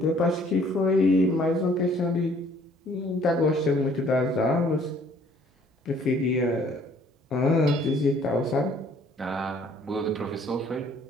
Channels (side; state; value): both; normal; correlation 0.58